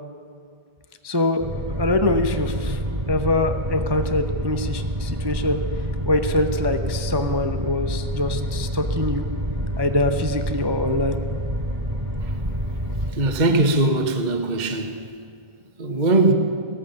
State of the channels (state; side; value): late; left; 1.2 ms